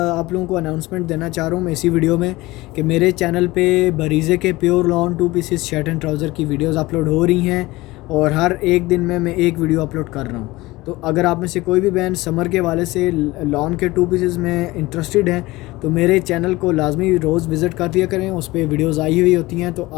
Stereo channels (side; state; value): right; quieter; 20.0 dB